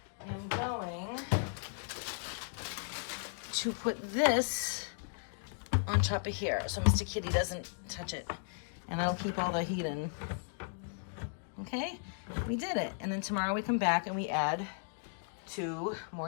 am going to put this on top of here so Mr. Kitty doesn't touch it. And I'll keep all the heat in. Okay, we did it. And then tomorrow we come back and we add 2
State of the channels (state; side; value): silent; right; digital silence